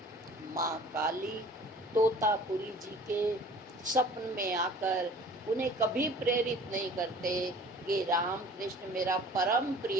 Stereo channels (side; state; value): both; normal; correlation 0.47